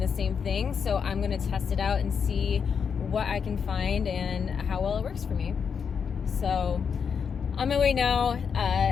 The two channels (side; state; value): right; quieter; 6.6 dB